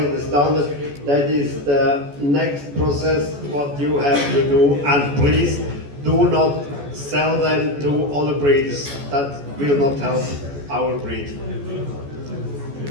to standard, that is the next process what you have to do, and please do not sell them to other breeders. That will not help our breed.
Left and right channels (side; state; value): left; late; 14 ms